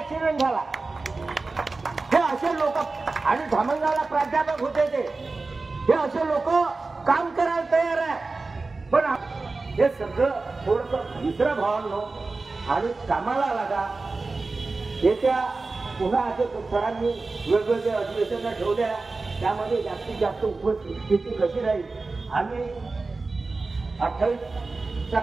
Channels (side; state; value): left; quieter; 3.7 dB